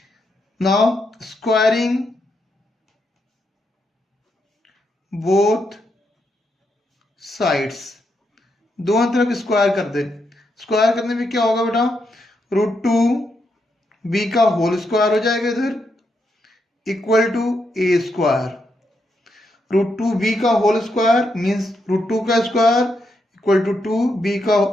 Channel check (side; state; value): both; normal; correlation 0.81